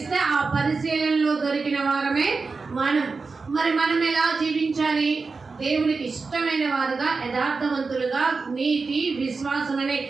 ఆ పరిశీలనలో దొరికిన వారమే మనం. మరి మనం ఎలా జీవించాలి? దేవునికి ఇష్టమైన వారుగా, యథార్థవంతులుగా, నీతి విశ్వాసం అనే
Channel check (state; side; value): quieter; left; 4.4 dB